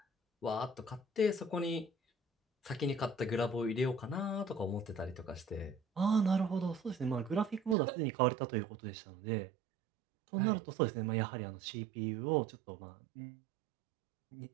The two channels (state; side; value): drops out; left; at 7.8 s